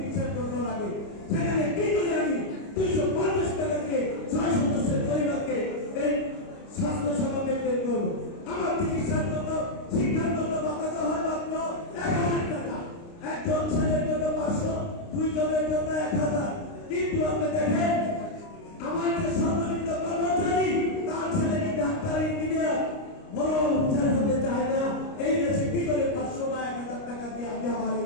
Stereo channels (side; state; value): right; late; 29 ms